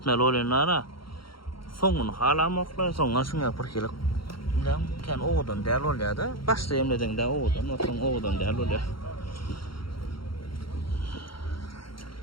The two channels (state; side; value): late; right; 0.73 ms